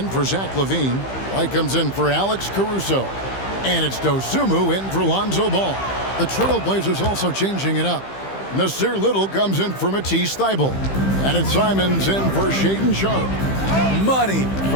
for Zach LaVine. White comes in for Alex Caruso. And it's Dosunmu in for Lonzo Ball. The Trailblazers also changing it up. Nasir Little comes in for Matisse Thybulle. And it's Simons in for Shaedon Sharp. Money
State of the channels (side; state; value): right; late; 15 ms